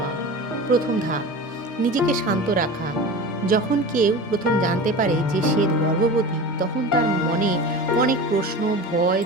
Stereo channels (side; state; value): both; normal; correlation 0.32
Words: প্রথম ধাপ, নিজেকে শান্ত রাখা। যখন কেউ প্রথম জানতে পারে যে সে গর্ভবতী, তখন তার মনে অনেক প্রশ্ন, ভয়,